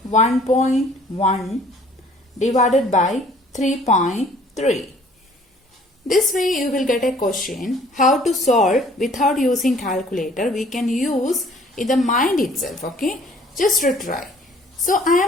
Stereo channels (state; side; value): normal; both; correlation 0.55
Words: 1.1 divided by 3.3. This way you will get a question how to solve without using calculator. We can use in the mind itself, okay, just to try. So I